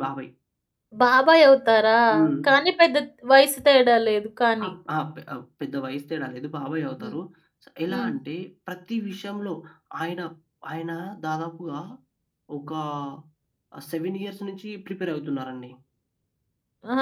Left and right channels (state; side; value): identical; both; correlation 1.00